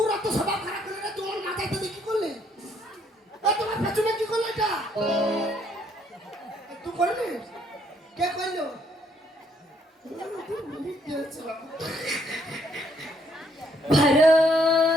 এত স্বভাব খারাপ করে রে তোমার মাথায় তো কি করলে তোমার পেছনে কি করলে এটা তুই করলি কে করলো भरो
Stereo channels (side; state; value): both; normal; correlation 0.69